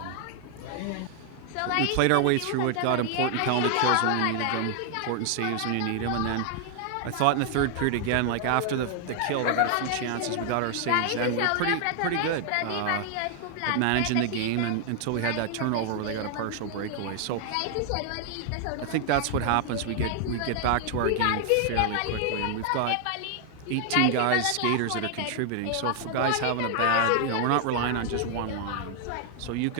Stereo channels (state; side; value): different; both; correlation 0.00